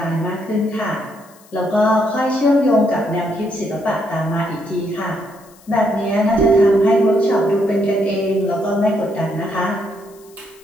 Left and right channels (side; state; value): left; noise; hiss, 27 dB below the sound